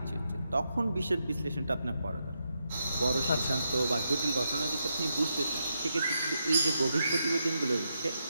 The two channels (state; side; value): inverted; both; correlation -0.83